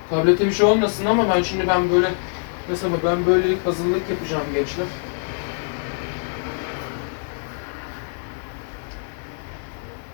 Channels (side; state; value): right; silent; 55 dB below the other